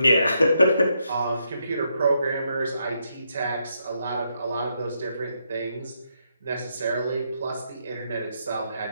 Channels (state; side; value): inverted; both; correlation -0.79